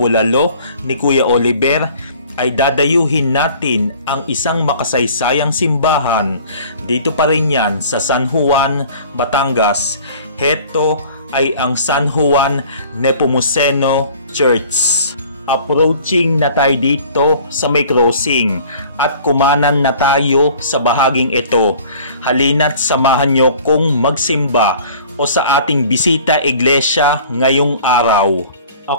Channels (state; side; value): inverted; both; correlation -0.49